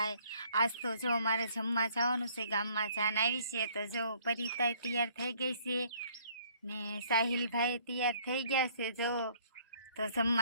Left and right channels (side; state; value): both; inverted; correlation -0.61